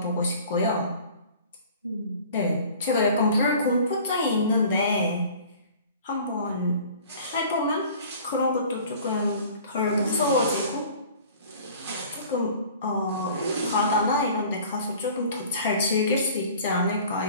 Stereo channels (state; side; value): inverted; both; correlation -0.47